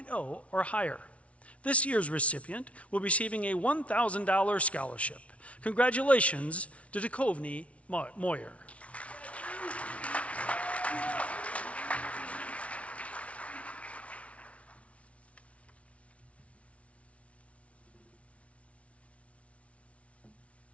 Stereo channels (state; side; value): late; right; 0.064 ms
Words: or higher. This year's recipient will be receiving a $1,000 scholarship. Congratulations to Duchovny Moyer.